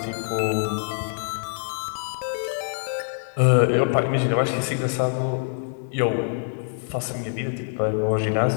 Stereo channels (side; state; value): right; silent; digital silence